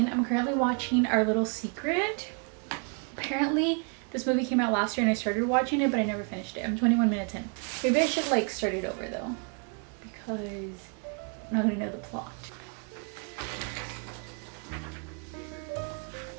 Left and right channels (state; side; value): quieter; left; 38.9 dB